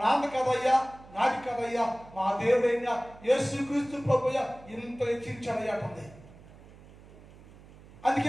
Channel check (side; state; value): right; noise; hum, 21 dB below the sound